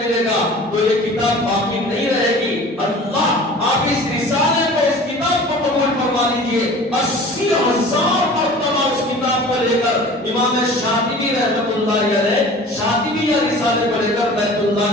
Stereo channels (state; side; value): normal; both; correlation 0.42